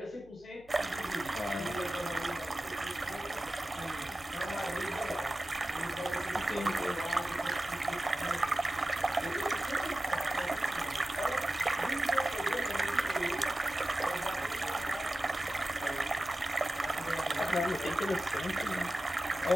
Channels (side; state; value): left; noise; hum, 26 dB below the sound